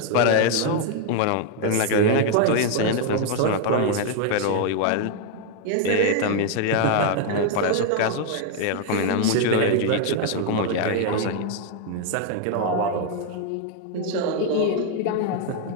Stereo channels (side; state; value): both; different; correlation 0.00